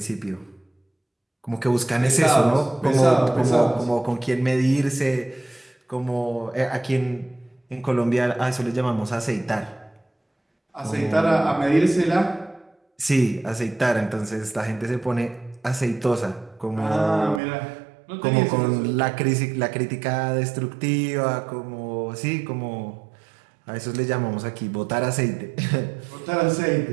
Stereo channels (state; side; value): drops out; left; at 17.4 s